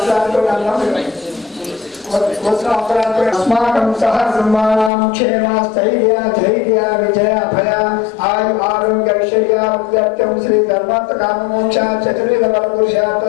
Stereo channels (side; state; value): right; drops out; at 4.9 s